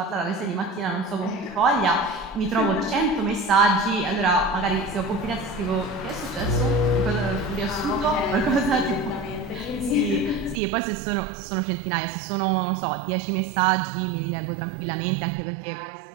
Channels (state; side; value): drops out; left; at 10.6 s